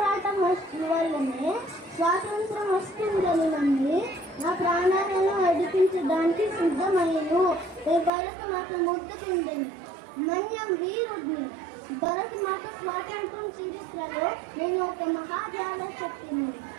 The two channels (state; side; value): drops out; left; at 8.1 s